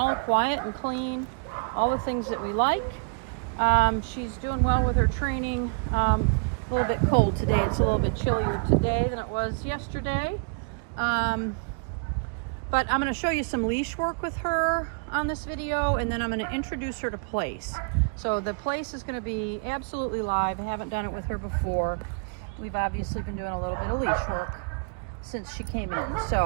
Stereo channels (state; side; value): quieter; left; 37.2 dB